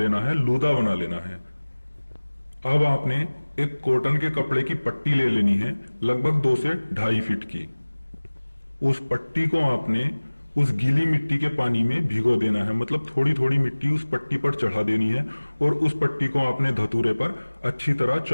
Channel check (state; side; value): inverted; both; correlation -1.00